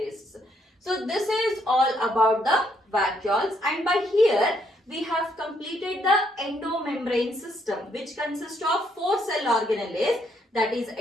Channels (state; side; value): normal; both; correlation 0.72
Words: So this is all about the vacuoles, and by here we have completed the endomembrane system, which consists of 4 cell organelles, that is